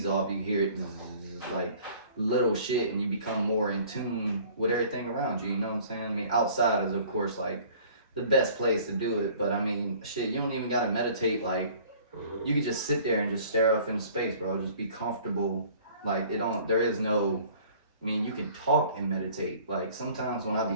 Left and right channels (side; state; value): both; inverted; correlation -0.51